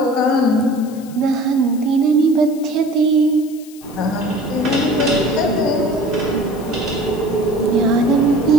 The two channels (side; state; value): left; noise; hiss, 22 dB below the sound